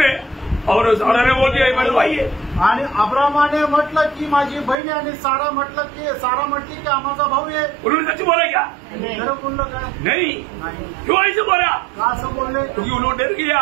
और सारा ने बोल दिया ये मेरा भाई है. आणि अब्रामाने म्हटलं की माझी बहीण आहे, आणि सारा म्हटली की आमचा भाऊ आहे. उन्होंने सच बोला क्या? खरं बोललं काय? नहीं. नाही. क्यों ऐसे बोला? का असं बोलले? क्योंकि उन्होंने डर गया.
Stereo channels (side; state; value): left; drops out; at 4.8 s